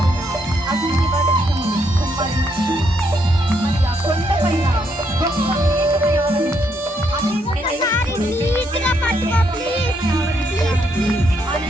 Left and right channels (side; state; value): both; normal; correlation 0.75